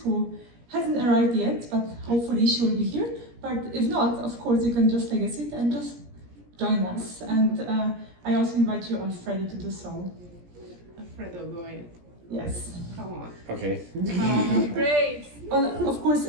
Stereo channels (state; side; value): late; left; 17 ms